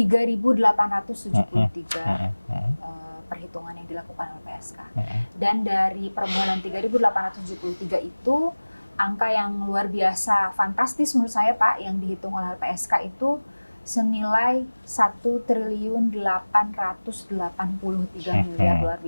perhitungan yang dilakukan LPSK. Dan dari permohonan 3.873 itu, angka yang luar biasa fantastis menurut saya Pak, yang dihitung oleh LPSK itu senilai 1.883 miliar. Luar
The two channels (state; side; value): inverted; both; correlation -1.00